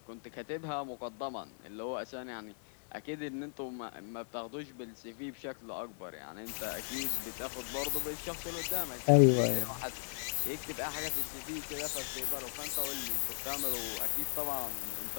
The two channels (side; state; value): right; silent; digital silence